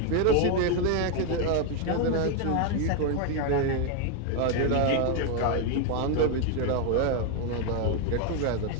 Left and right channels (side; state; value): both; different; correlation 0.01